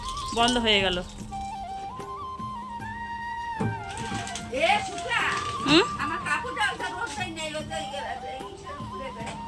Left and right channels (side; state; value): both; identical; correlation 1.00